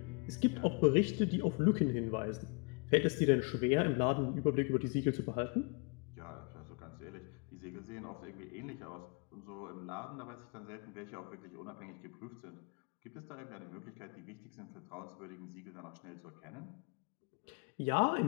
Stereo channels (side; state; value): right; quieter; 34.7 dB